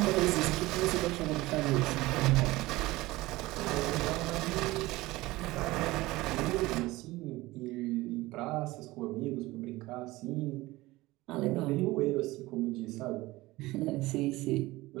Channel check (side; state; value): left; quieter; 19.4 dB